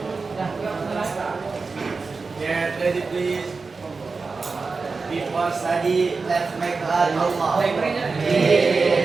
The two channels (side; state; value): left; quieter; 4.3 dB